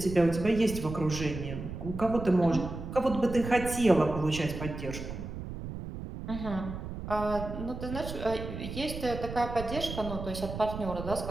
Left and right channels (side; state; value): right; noise; rumble, 8 dB below the sound